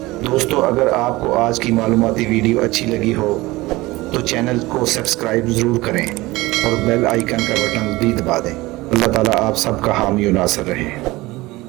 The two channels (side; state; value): left; quieter; 20.2 dB